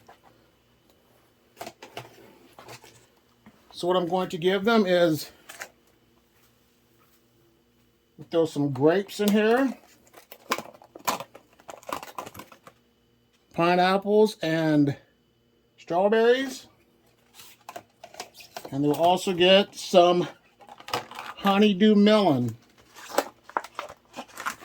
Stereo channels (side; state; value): both; identical; correlation 1.00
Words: So what I'm going to give them is throw some grapes in here, pineapples, and strawberries. And they'll also get some honeydew melon.